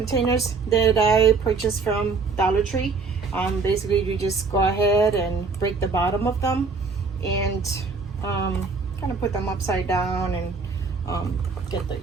that I purchased from Dollar Tree. Basically you just go ahead and break the bottom of them and kind of put them upside down and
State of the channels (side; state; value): left; quieter; 4.5 dB